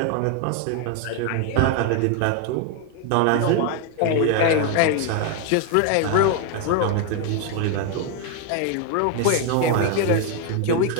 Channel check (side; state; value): both; different; correlation 0.01